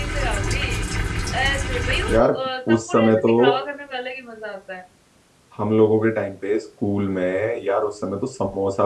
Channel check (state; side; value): identical; both; correlation 1.00